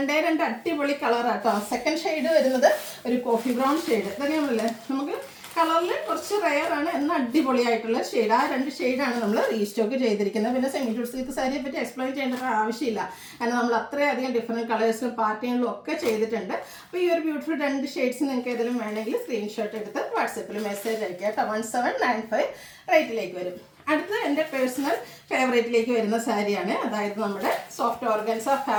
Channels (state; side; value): identical; both; correlation 1.00